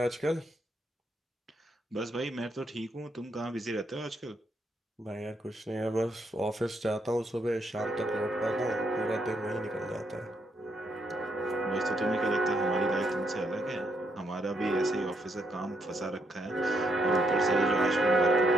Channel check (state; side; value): normal; both; correlation 0.76